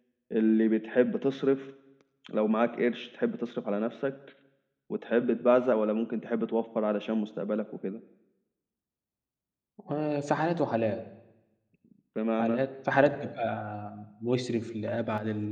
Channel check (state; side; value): identical; both; correlation 1.00